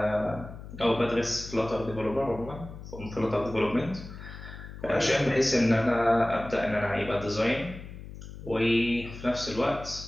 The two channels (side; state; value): left; noise; hum, 13 dB below the sound